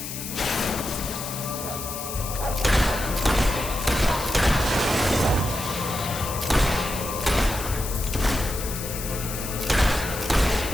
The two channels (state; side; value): noise; left; hiss, 8 dB below the sound